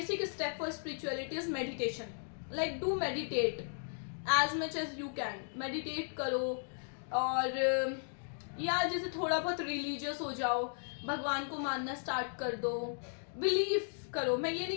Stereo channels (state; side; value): silent; right; digital silence